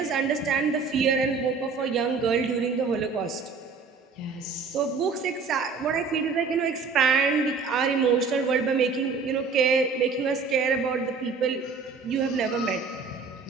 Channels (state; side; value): quieter; left; 4.9 dB